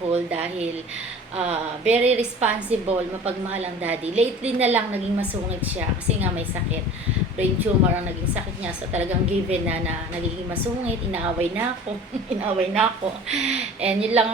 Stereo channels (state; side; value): normal; both; correlation 0.42